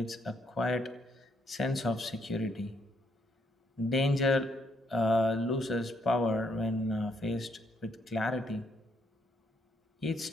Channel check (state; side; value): normal; both; correlation 0.73